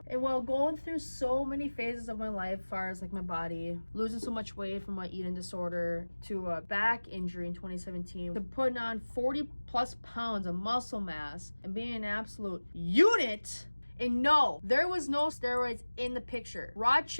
And while going through so many phases of my life, as far as like my body, losing so much weight from my eating disorder, to a back injury in 2017, to putting on 40 plus pounds of muscle mass and being an absolute unit. And no, there was no steroids in the picture. Raw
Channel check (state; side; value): inverted; both; correlation -1.00